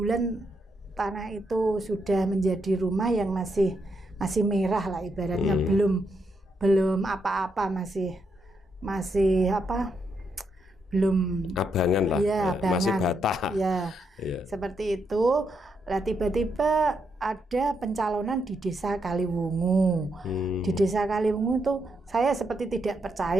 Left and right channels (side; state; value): both; normal; correlation 0.80